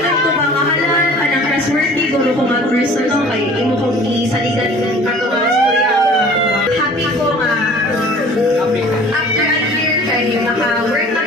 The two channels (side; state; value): both; normal; correlation 0.48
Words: ko ba mahalal ka ng trustworthy guro ko mag-personal kay imo kong isaligan ka mga storya. Happy ko nga. After a year kay naka-work na